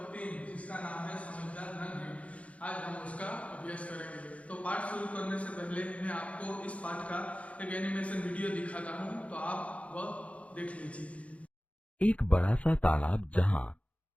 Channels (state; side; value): late; right; 0.064 ms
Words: 3 जिसका नाम है समझदार नन्हे, आज हम उसका अभ्यास करेंगे। तो पाठ शुरू करने से पहले मैं आपको इस पाठ का एक एनिमेशन वीडियो दिखाता हूं, तो आप वह देख लीजिए। एक बड़ा सा तालाब जहाँ